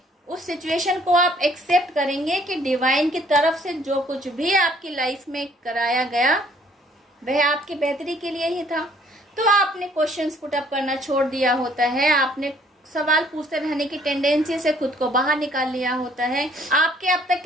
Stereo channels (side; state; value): both; normal; correlation 0.61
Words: उस सिचुएशन को, आप एक्सेप्ट करेंगे कि डिवाइन की तरफ से जो कुछ भी आपकी लाइफ में कराया गया वह आपकी बेहतरी के लिए ही था। तो आपने क्वेश्चंस पुट अप करना छोड़ दिया होता है, आपने सवाल पूछते रहने की टेंडेंसी से खुद को बाहर निकाल लिया होता है। आपके अब तक